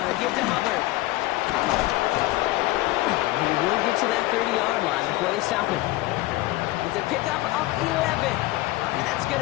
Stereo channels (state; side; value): quieter; right; 18.4 dB